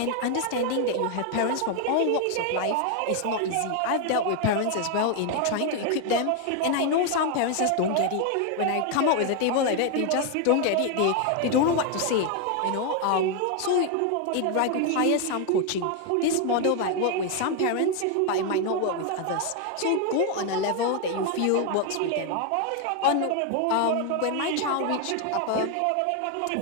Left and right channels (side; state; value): both; different; correlation 0.01